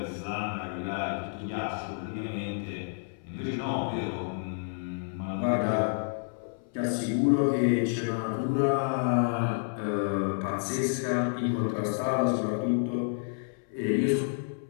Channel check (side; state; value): right; silent; 58 dB below the other